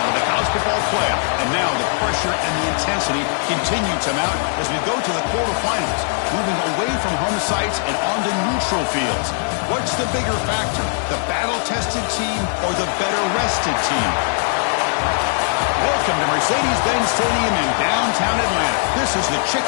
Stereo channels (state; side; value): silent; right; 66 dB below the other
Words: of the college football playoff, and now the pressure and the intensity continue to mount as we go to the quarterfinals, moving away from home sites and onto neutral fields. What's the bigger factor, the battle-tested team or the better-rested team? Welcome to Mercedes-Benz Stadium in downtown Atlanta. This is the